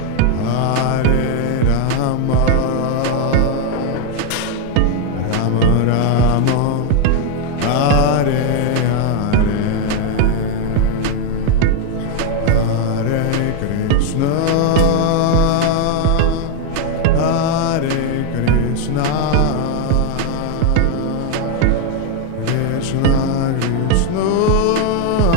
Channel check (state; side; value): different; both; correlation 0.01